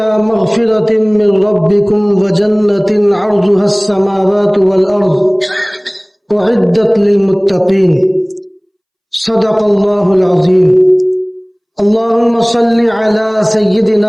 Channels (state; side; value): identical; both; correlation 1.00